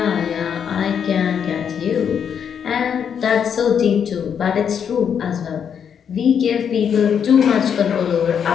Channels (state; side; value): quieter; right; 7.8 dB